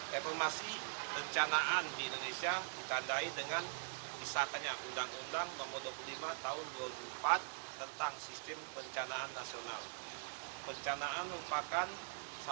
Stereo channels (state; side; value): silent; left; digital silence